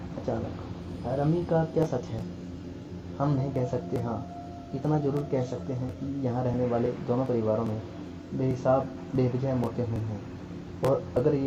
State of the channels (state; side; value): identical; both; correlation 1.00